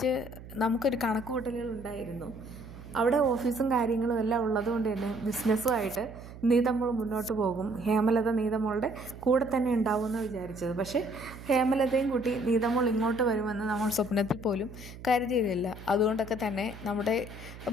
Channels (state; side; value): noise; right; hum, 15 dB below the sound